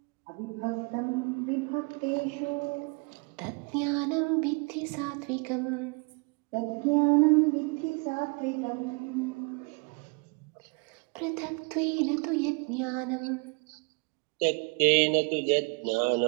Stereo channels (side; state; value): left; quieter; 31.9 dB